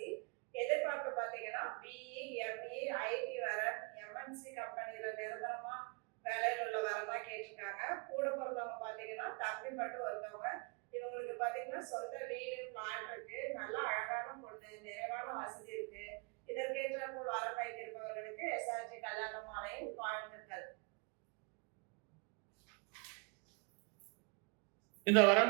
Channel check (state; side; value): quieter; left; 33.0 dB